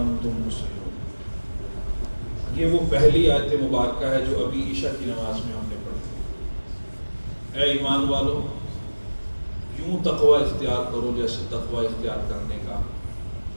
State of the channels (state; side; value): inverted; both; correlation -1.00